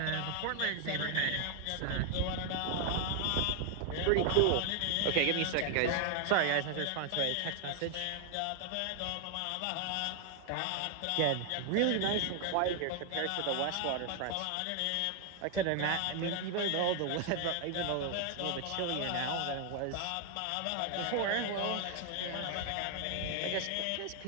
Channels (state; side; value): different; both; correlation 0.00